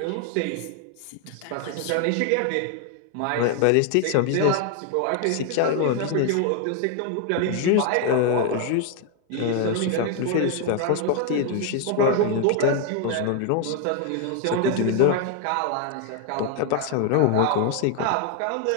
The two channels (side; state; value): both; different; correlation 0.00